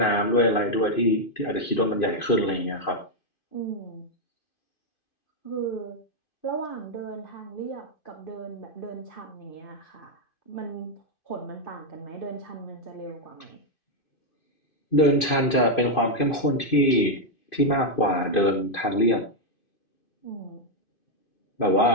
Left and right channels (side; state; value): right; late; 2.5 ms